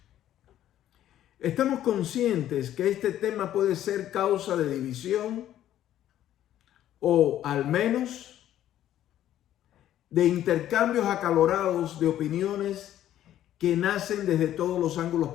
Estamos conscientes que este tema puede ser causa de división o al menos de intercambios acalorados de opiniones que nacen desde todos los ángulos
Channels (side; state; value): right; quieter; 12.1 dB